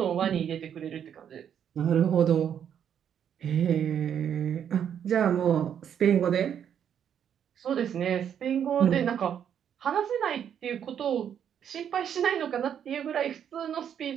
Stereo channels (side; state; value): left; quieter; 8.8 dB